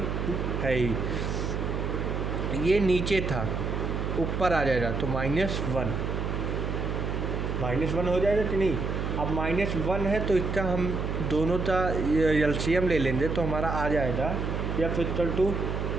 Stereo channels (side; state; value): right; noise; hum, 2 dB below the sound